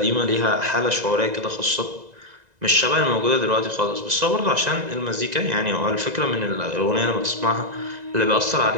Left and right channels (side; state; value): left; late; 2.0 ms